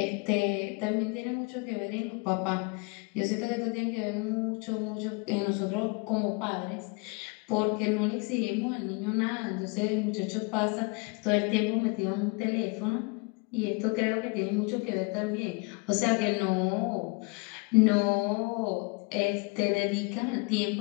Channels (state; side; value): quieter; right; 30.3 dB